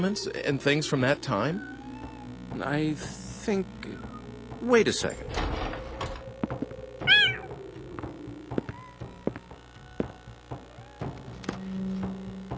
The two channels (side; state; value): both; identical; correlation 1.00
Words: and things from that time? I think... Wait a second.